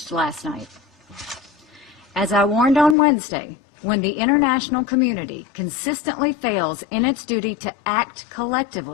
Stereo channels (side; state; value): right; drops out; at 3.0 s